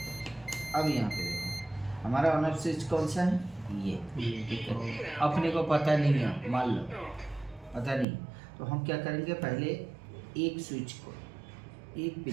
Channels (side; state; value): left; drops out; at 8.1 s